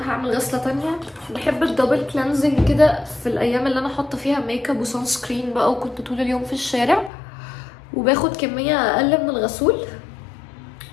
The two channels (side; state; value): right; drops out; at 7.1 s